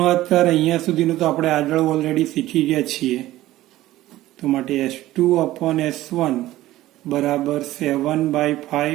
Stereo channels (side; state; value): left; quieter; 15.7 dB